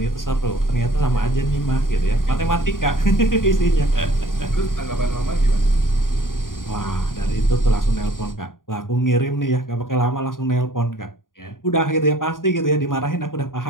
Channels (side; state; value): right; late; 0.90 ms